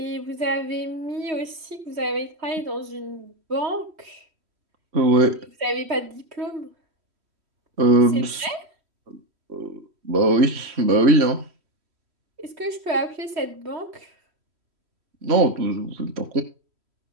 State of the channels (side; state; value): left; late; 3.1 ms